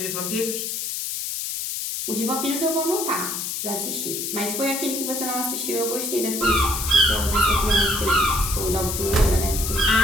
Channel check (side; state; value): left; noise; hiss, 3 dB below the sound